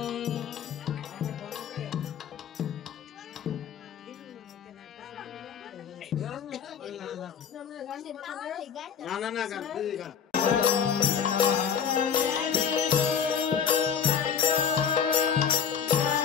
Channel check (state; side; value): quieter; right; 7.5 dB